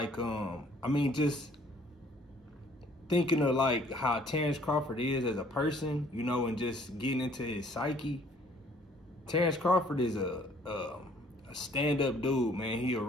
I mean, just thinking of like how Terence Crawford is as a person, you know, and just getting into his psyche. Terence Crawford is a stand-up dude, man. He a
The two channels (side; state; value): both; normal; correlation 0.59